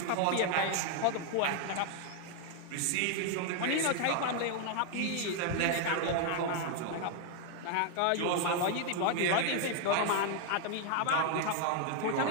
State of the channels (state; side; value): different; both; correlation 0.00